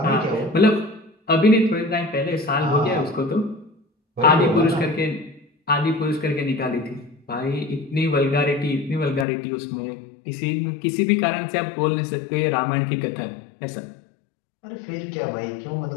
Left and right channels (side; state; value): right; drops out; at 9.2 s